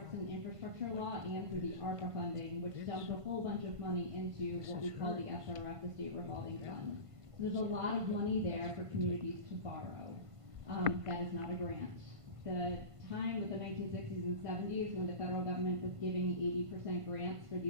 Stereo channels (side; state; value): left; late; 1.5 ms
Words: infrastructure law and through the ARPA funding, which dumped a whole bunch of money into what we call the SRF, the State Revolving Fund. So there's a lot of money there for communities to borrow. That is not a grant. The time of the 1960s and 70s when the federal government was giving 80% grants for